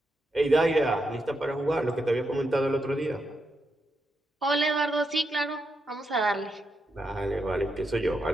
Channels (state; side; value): normal; both; correlation 0.83